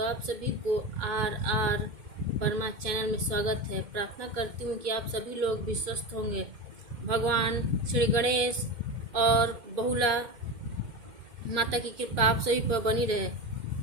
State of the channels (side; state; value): left; late; 2.1 ms